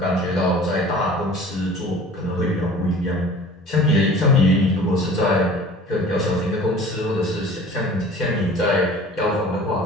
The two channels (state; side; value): normal; both; correlation 0.44